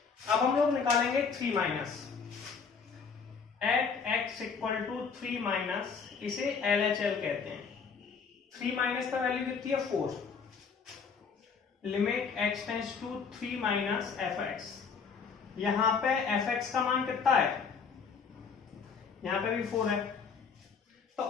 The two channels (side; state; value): right; quieter; 5.7 dB